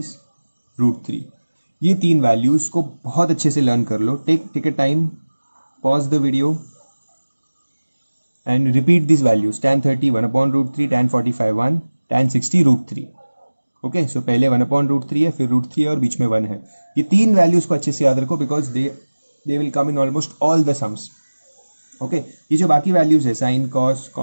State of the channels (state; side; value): inverted; both; correlation -1.00